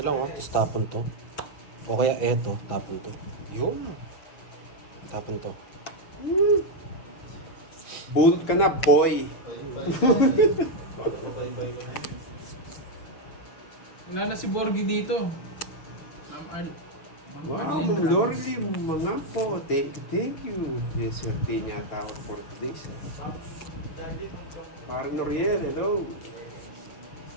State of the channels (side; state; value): right; late; 6.6 ms